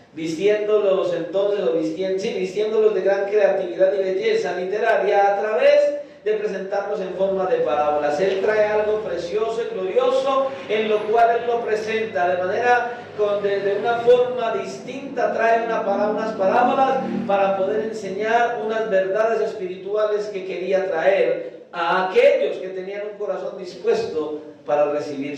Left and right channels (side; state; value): both; identical; correlation 1.00